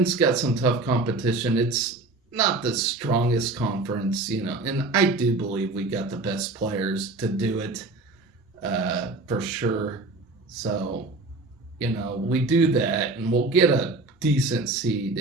got some tough competition, it's not the strongest conference, and I do believe we got the best players to do it, for sure. So, we do that, and we'll get a decent seed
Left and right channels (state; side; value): quieter; left; 3.3 dB